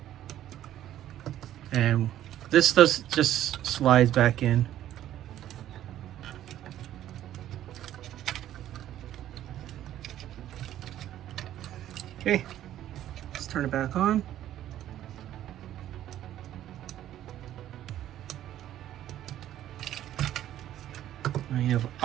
And this just slides back in. Okay, let's turn it back on. Now you have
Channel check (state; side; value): quieter; left; 12.3 dB